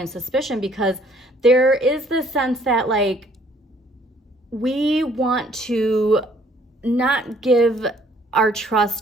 suspicion, because there is this sense that, like, we want to not give our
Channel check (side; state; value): both; normal; correlation 0.61